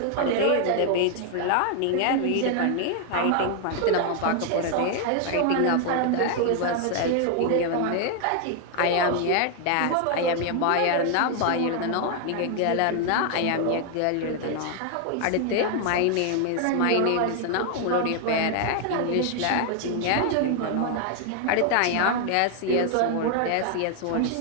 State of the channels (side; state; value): both; different; correlation 0.00